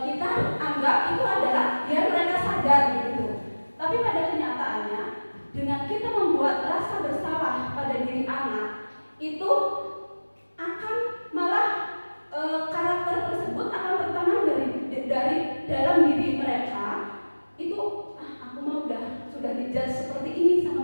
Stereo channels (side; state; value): both; inverted; correlation -1.00